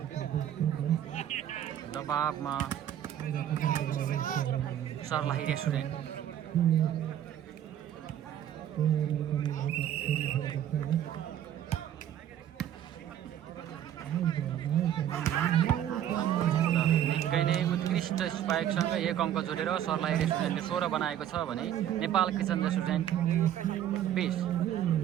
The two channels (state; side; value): quieter; left; 10.8 dB